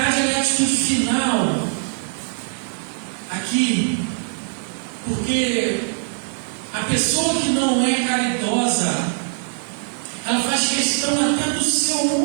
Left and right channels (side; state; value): left; silent; 64 dB below the other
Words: é a atitude final aqui, porque a pessoa que não é caridosa, ela faz questão até do seu